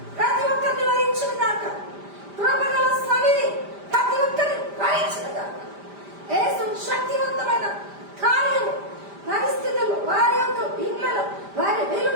ప్రతి ఒక్కరిని వరించిన దాక, కృపగల సన్నిధి ప్రతి ఒక్కరిని వరించిన దాక, యేసు శక్తివంతమైన కార్యం పరిస్థితులు, వారి యొక్క ఇండ్లలో, వారి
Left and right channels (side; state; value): left; late; 5.0 ms